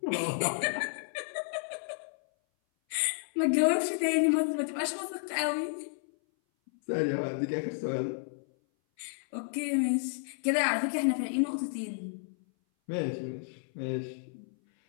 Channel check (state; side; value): silent; right; 57 dB below the other